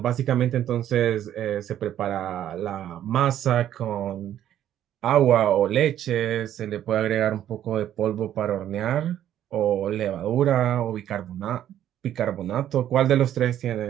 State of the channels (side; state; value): left; quieter; 11.3 dB